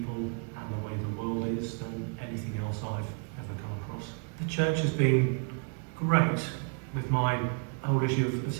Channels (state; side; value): quieter; left; 39.4 dB